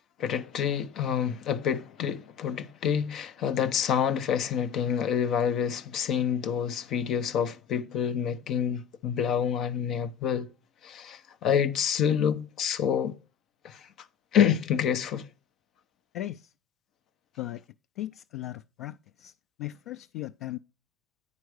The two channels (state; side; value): quieter; right; 8.1 dB